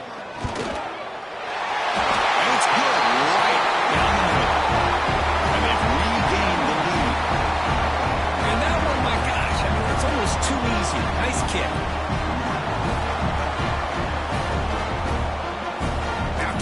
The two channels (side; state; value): both; identical; correlation 1.00